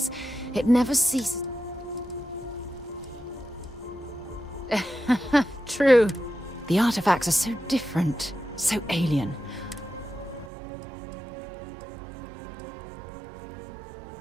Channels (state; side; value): drops out; left; at 10.5 s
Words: it never ceases... True. The artifacts are so different, so alien.